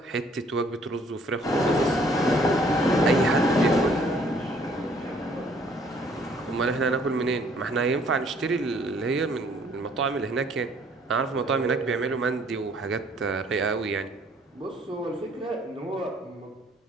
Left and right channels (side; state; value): both; normal; correlation 0.61